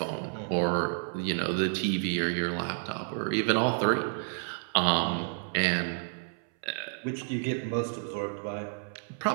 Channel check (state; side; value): silent; left; 58 dB below the other